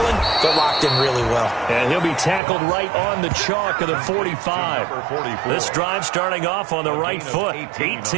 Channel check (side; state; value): left; drops out; at 2.4 s